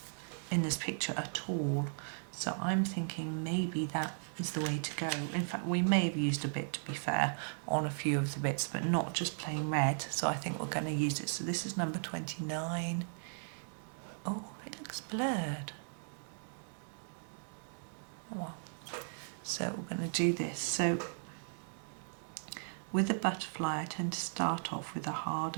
in this picture at all. So I'm thinking maybe that is the way to go. In fact, we may have used a bit, to be fair, on a few of the bits, but not just plain red. So I think we're going to use it. So this is number 29. Oh, it looks blurred. Oh well. So we're going to do this. So with the butterfly, I tend to start off with a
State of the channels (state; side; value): silent; left; digital silence